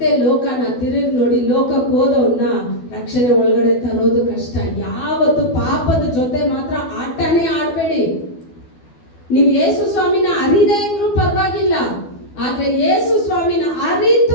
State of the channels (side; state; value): right; late; 12 ms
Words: ಲೋಕನ ತಿರುಗಿ ನೋಡಿ ಲೋಕಕ್ಕೆ ಹೋದವನ್ನ ರಕ್ಷಣೆ ಒಳಗಡೆ ತರೋದು ಕಷ್ಟ. ಯಾವತ್ತು ಪಾಪದ ಜೊತೆ ಮಾತ್ರ ಆಟನೇ ಆಡ್ಬೇಡಿ. ನೀವು ಯೇಸು ಸ್ವಾಮಿನ ಅರಿದೇ ಇದ್ರೂ ಪರವಾಗಿಲ್ಲ, ಆದ್ರೆ ಯೇಸು ಸ್ವಾಮಿನ